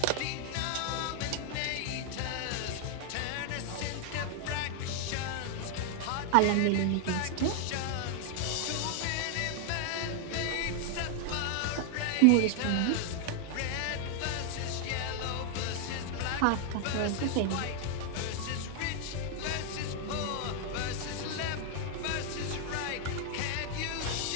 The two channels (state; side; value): different; both; correlation 0.00